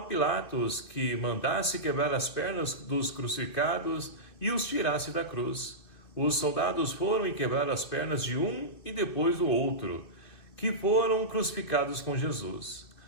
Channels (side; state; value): right; late; 2.7 ms